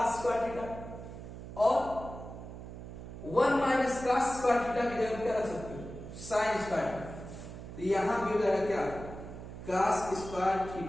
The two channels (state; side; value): noise; right; hum, 11 dB below the sound